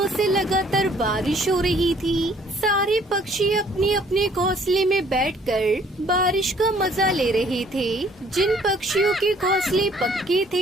से लगातार बारिश हो रही थी। सारे पक्षी अपने अपने घोंसले में बैठकर बारिश का मजा ले रहे थे। जिन पक्षियों के घोंसले पक्के थे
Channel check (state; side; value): normal; both; correlation 0.59